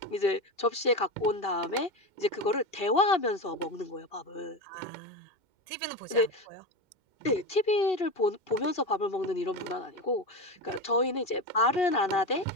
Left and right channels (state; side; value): late; right; 2.7 ms